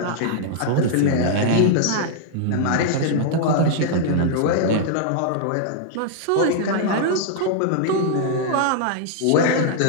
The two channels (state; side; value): different; both; correlation -0.01